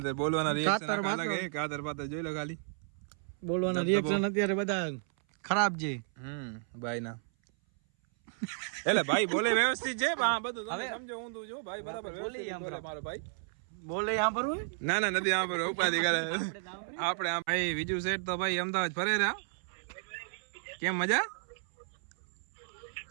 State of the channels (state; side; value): silent; left; 56 dB below the other